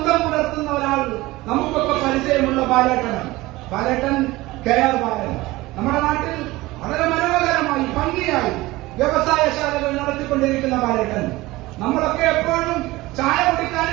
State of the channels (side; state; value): left; quieter; 19.5 dB